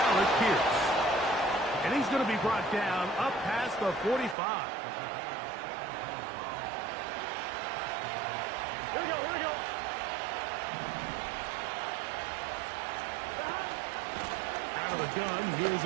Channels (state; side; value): drops out; left; at 4.4 s